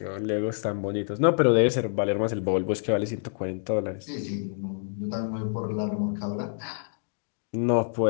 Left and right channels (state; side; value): silent; right; digital silence